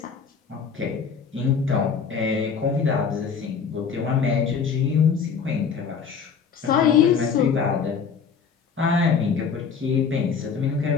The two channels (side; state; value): right; quieter; 6.1 dB